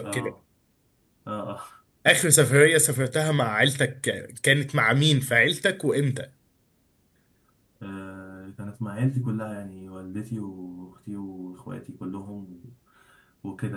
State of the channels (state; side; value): identical; both; correlation 1.00